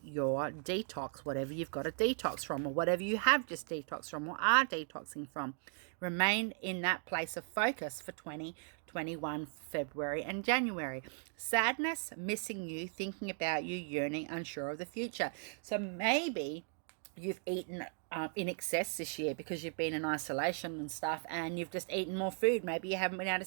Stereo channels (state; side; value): silent; left; 53 dB below the other